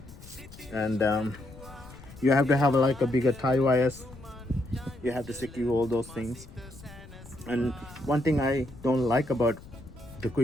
and you have to have like a bigger tie wires. You have to secure all those things. And one thing I don't like about the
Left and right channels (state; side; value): noise; left; rumble, 18 dB below the sound